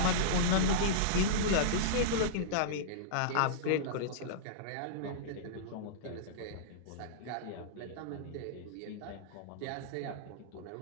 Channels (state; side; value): different; both; correlation -0.04